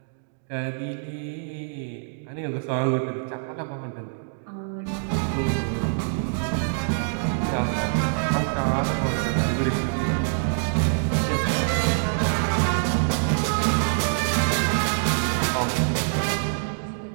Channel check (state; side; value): silent; left; digital silence